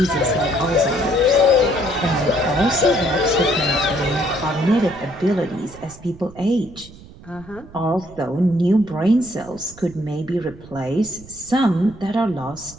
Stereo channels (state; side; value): noise; right; rumble, 19 dB below the sound